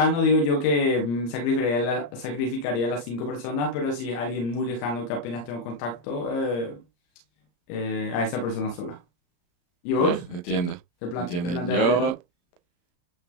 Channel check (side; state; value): right; late; 34 ms